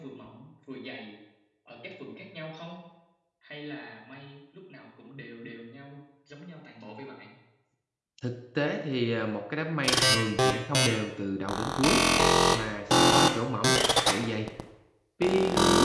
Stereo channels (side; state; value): both; identical; correlation 1.00